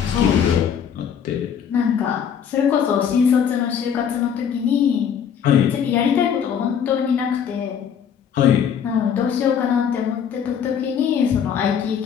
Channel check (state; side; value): quieter; right; 8.0 dB